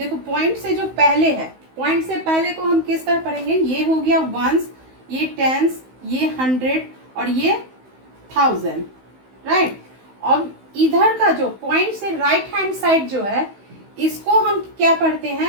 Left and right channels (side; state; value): left; late; 16 ms